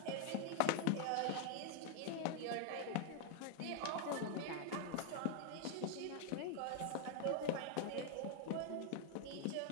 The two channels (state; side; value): different; both; correlation 0.00